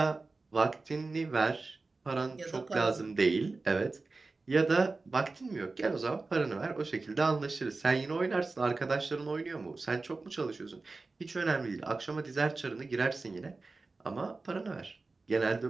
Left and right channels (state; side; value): quieter; left; 3.7 dB